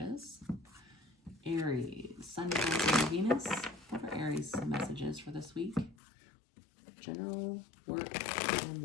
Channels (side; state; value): right; drops out; at 6.0 s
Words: Aries, Sun, Moon, and Venus. What are Aries' messages for this week? General, work, and